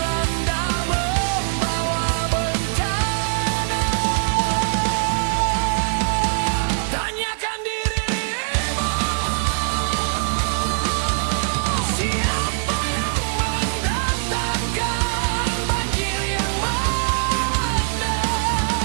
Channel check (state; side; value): silent; left; digital silence